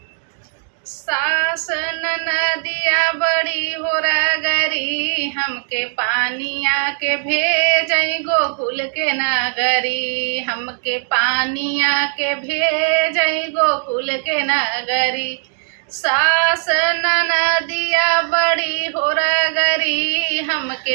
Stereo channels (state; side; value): silent; left; 59 dB below the other